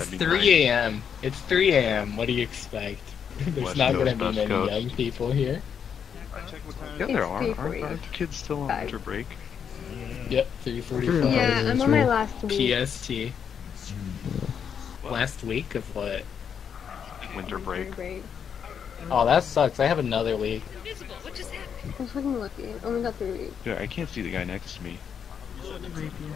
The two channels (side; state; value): right; quieter; 7.5 dB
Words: that'd be 3 nice. a.m. It's 3 a.m. What do you expect? There's West not Coast, gonna be West many Coast. young people here. Yeah, there It's are. 3:40. Aren't the kids still on winter break? Yep, 3:45. Yeah, I'm on my last week. PST. Last week of what? Winter break. Oh, that sucks. I have another week. I'm fucking lucky. I only got 3 weeks. Yeah, I can't see the guy next to me.